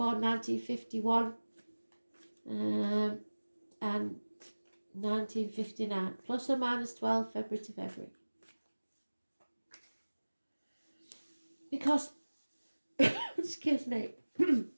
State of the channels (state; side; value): inverted; both; correlation -1.00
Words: 1951, and 1959, plus or minus 12 February to February. Because, excuse me,